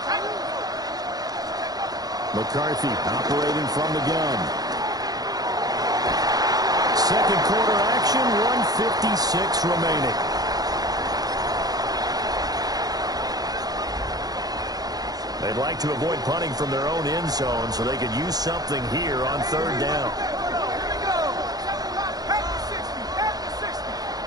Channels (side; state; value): left; late; 0.19 ms